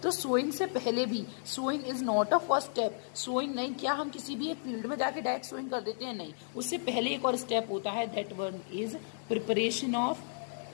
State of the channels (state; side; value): silent; right; digital silence